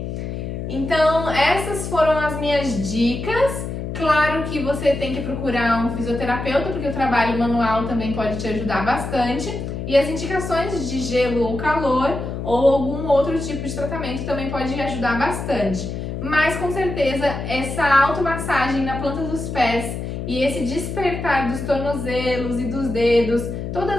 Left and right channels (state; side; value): noise; left; hum, 5 dB below the sound